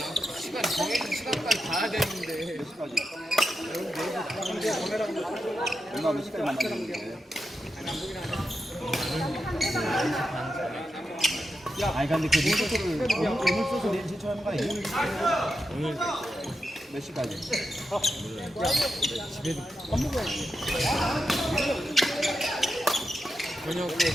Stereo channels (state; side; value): normal; both; correlation 0.87